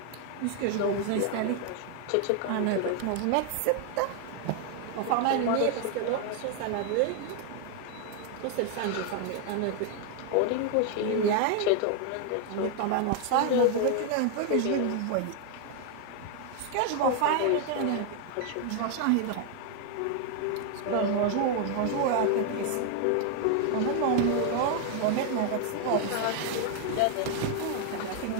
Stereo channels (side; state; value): both; different; correlation 0.00